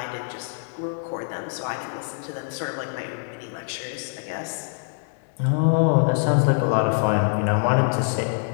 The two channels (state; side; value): silent; right; digital silence